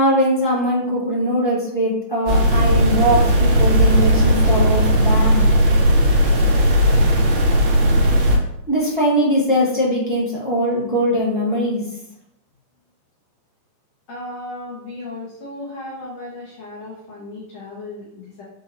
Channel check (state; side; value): inverted; both; correlation -0.53